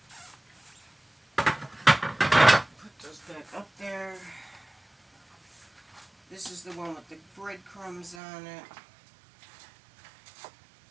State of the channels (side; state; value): left; drops out; at 8.2 s